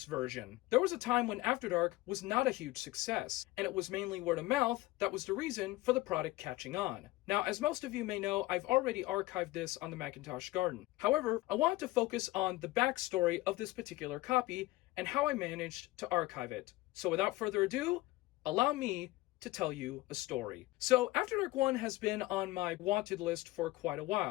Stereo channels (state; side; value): quieter; right; 18.7 dB